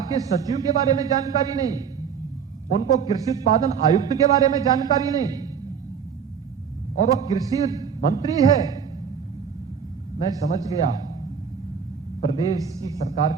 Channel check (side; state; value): left; quieter; 7.0 dB